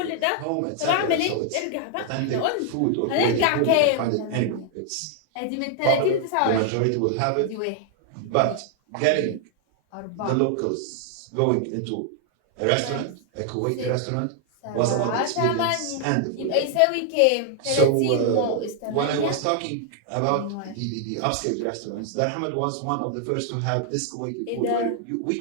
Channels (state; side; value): different; both; correlation 0.00